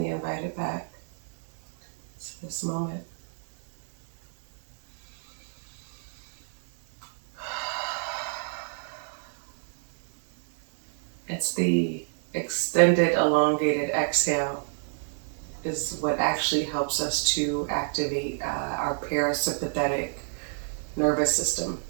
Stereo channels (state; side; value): silent; left; 58 dB below the other